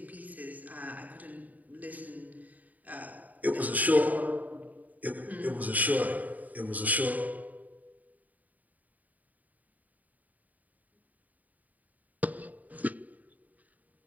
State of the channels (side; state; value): left; late; 0.077 ms